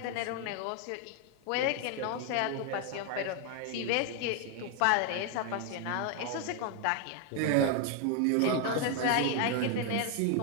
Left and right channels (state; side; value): different; both; correlation 0.00